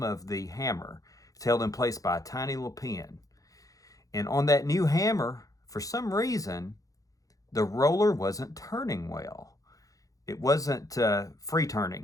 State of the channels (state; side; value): late; right; 0.17 ms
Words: of the hammer. It's held in place by a tiny little pin. And on that new hammer, for some reason, the roller wasn't turning well. It wasn't free